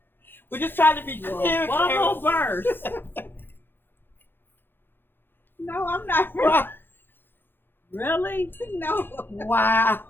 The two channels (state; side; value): late; right; 0.10 ms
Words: We're just trying to be clear, Bubble Karen. burst. no, I'm not. Wow. Really? No. Wow.